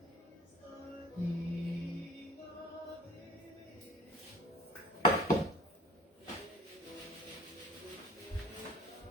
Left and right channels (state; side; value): normal; both; correlation 0.47